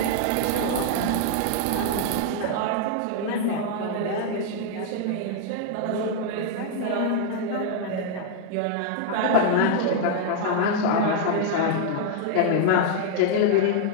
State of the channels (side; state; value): both; different; correlation 0.00